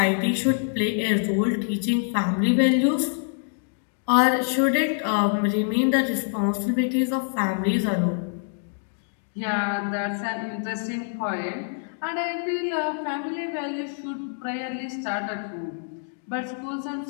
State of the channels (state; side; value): silent; right; digital silence